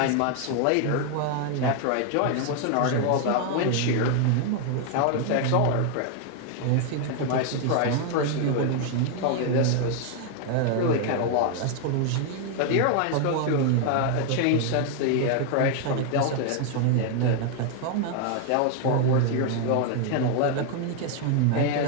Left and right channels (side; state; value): both; different; correlation 0.00